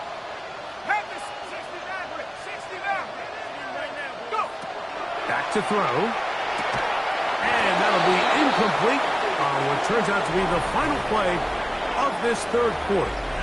Have this 69, Rick. 69. Go. Back to throw. And that'll be incomplete on what turns out to be the final play of this third quarter.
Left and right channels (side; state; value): both; identical; correlation 1.00